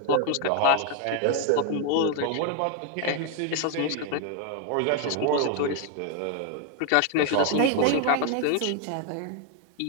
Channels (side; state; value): both; different; correlation 0.01